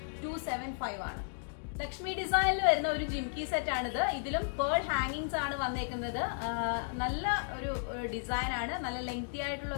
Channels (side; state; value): right; silent; digital silence